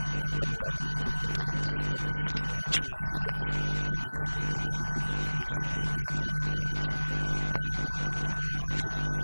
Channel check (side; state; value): both; inverted; correlation -1.00